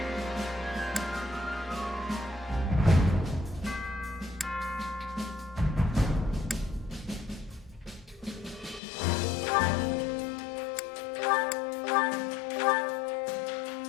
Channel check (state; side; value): drops out; right; at 8.8 s